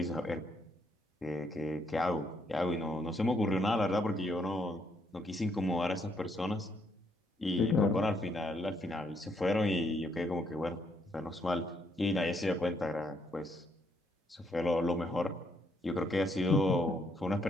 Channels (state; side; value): normal; both; correlation 0.73